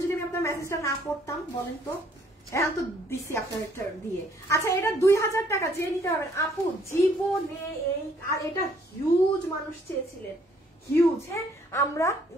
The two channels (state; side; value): normal; both; correlation 0.64